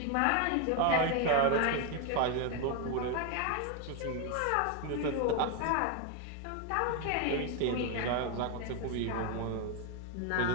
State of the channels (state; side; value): different; both; correlation 0.01